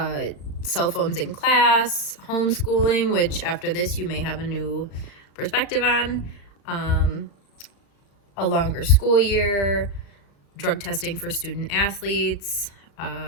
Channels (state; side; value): late; right; 35 ms